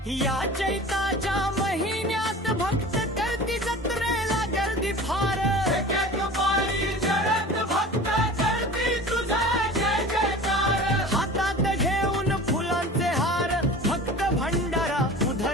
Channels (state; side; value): normal; both; correlation 0.38